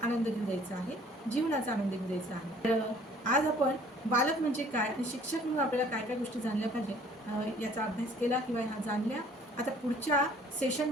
आनंद घेऊ द्यायचा आहे, जीवनाचा आनंद घेऊ द्यायचा आहे. तर आज आपण बालक म्हणजे काय आणि शिक्षक म्हणून आपल्याला काय काय गोष्टी जाणल्या पाहिजे याचा अभ्यास केला किंवा ह्या जाणल्या. आता पुढच्या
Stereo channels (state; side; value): normal; both; correlation 0.55